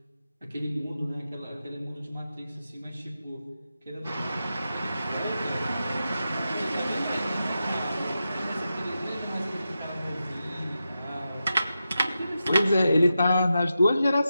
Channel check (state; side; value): inverted; both; correlation -0.90